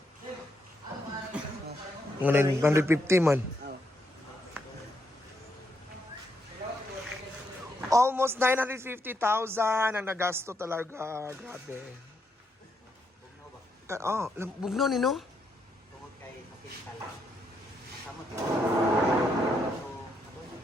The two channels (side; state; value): both; normal; correlation 0.78